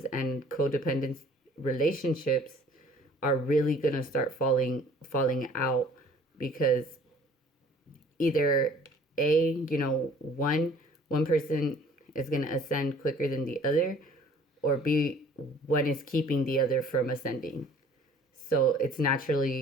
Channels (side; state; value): both; normal; correlation 0.53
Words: and codependent relationships are really going to start falling out, because either one person is going to ascend quicker than the other, or B, one is keeping the other from ascending. So it's